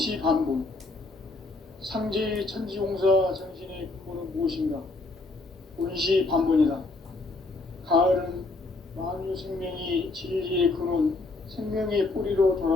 상제의 천지공사 정신의 근본은 무엇인가? 운시반본이다. 가을은 만유 생명이 진리의 근원, 생명의 뿌리로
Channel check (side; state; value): right; quieter; 3.3 dB